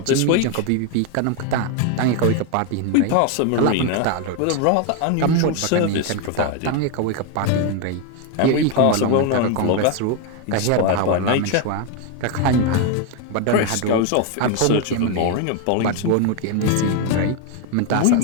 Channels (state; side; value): different; both; correlation 0.01